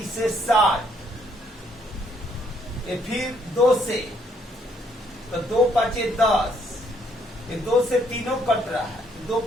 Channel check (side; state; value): both; normal; correlation 0.69